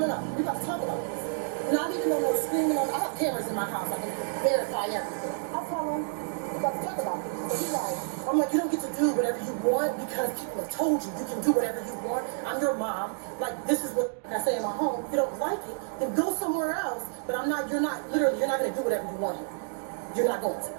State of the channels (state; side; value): silent; left; digital silence